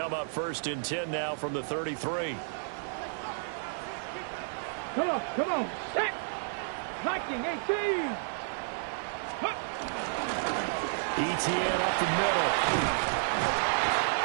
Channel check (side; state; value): left; silent; 57 dB below the other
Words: up 1st and 10 now from the 33. Come on. Set. Viking 18. ETN up the middle.